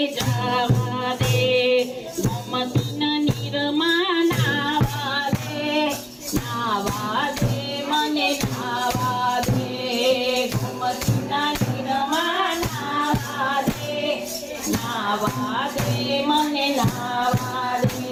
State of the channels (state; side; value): identical; both; correlation 1.00